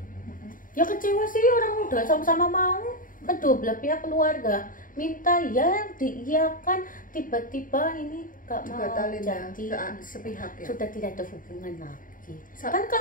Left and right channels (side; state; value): right; late; 0.39 ms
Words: Ya kecewa sih, orang udah sama-sama mau. Kedua belah pihak keluarga minta ya diiyakan, tiba-tiba ini gak mau Batalin ya, jadi sepihak ya. sudah tidak ada hubungan lagi. Sa- Kan